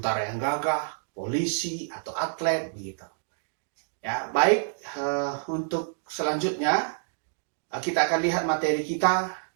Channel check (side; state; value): left; silent; digital silence